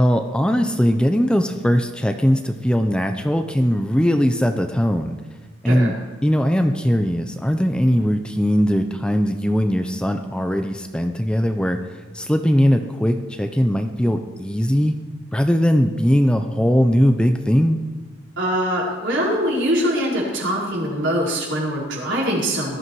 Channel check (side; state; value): both; normal; correlation 0.89